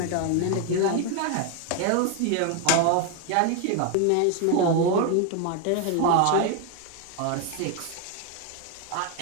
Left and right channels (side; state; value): both; different; correlation 0.01